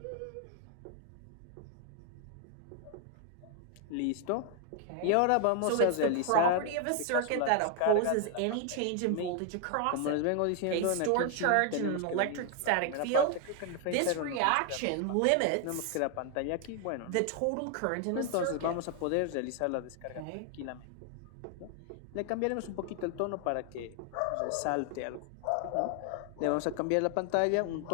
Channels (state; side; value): different; both; correlation 0.00